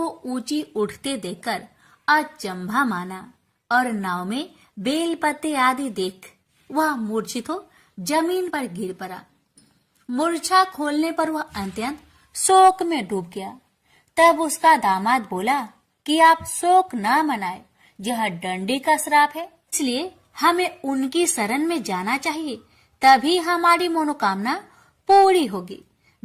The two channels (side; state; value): both; identical; correlation 1.00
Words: ऊंची उठते देखकर अचंभा माना और नाव में बेल पत्ते आदि देख वह मूर्छित हो जमीन पर गिर पड़ा। मूर्छा खोलने पर वह अत्यंत शोक में डूब गया। तब उसका दामाद बोला कि आप शोक न मनाए, यह दंडी का श्राप है, इसलिए हमें उनकी शरण में जाना चाहिए, तभी हमारी मनोकामना पूरी होगी।